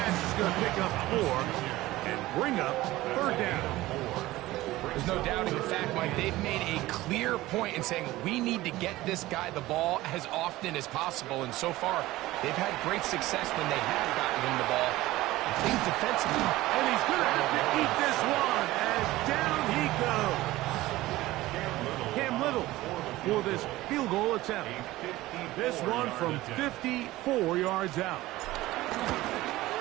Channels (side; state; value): left; quieter; 17.5 dB